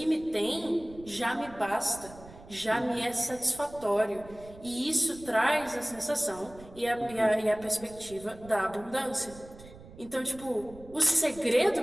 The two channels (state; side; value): noise; right; rumble, 19 dB below the sound